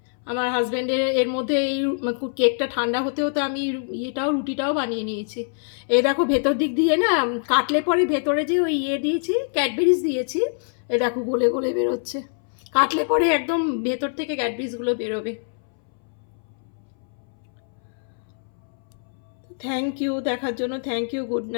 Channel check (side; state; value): right; silent; 61 dB below the other